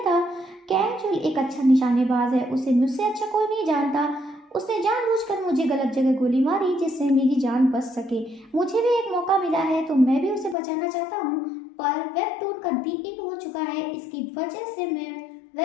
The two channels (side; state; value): right; drops out; at 10.6 s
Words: कैंग चुल एक अच्छा निशानेबाज है, उसे मुझसे अच्छा कोई नहीं जानता। उसने जानबूझकर मुझे गलत जगह गोली मारी जिससे मेरी जान बच सके। मुझे भी एक मौका मिला है तो मैं भी उसे बचाना चाहता हूँ, पर वेबटून का दी एंड हो चुका है, इसकी वजह से मैं